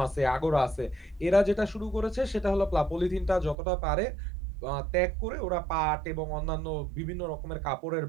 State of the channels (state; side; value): drops out; left; at 3.6 s